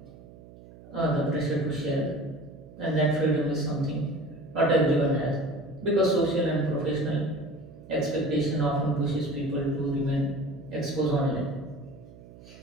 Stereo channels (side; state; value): right; noise; hum, 20 dB below the sound